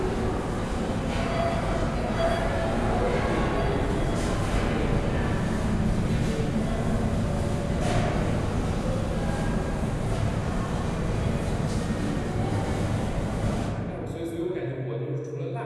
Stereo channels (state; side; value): identical; both; correlation 1.00